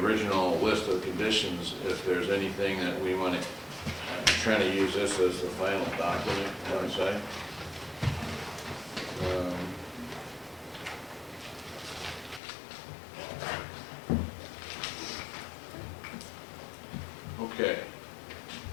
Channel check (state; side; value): drops out; right; at 12.4 s